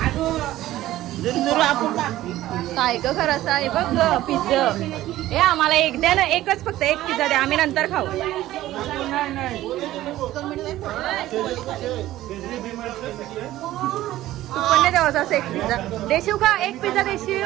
काय ग खरंच आहे बघ ग पिझ्झा. हे आम्हाला एक द्या ना, एकच फक्त एक पिझ्झा द्या, आम्ही नंतर खाऊ. तू पण नाही द्यावं असं एक पिझ्झा देशील का? एक पिझ्झा देशील?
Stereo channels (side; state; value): left; quieter; 15.0 dB